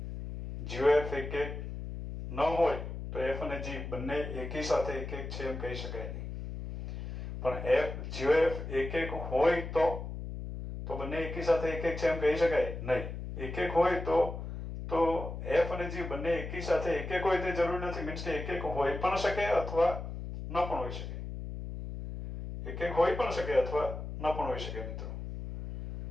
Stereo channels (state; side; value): noise; left; hum, 7 dB below the sound